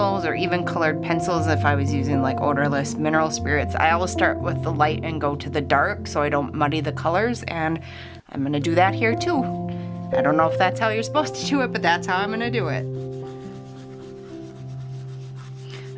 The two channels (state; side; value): identical; both; correlation 1.00